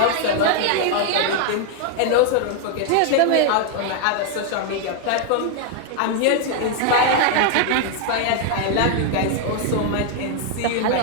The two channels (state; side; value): different; both; correlation 0.00